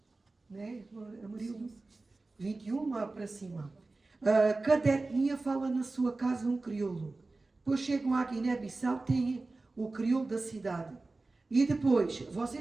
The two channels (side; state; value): left; quieter; 3.4 dB